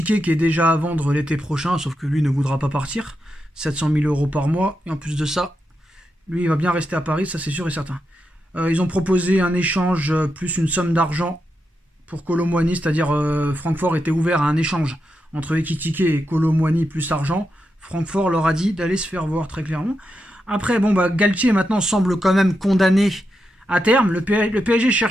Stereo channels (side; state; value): both; normal; correlation 0.86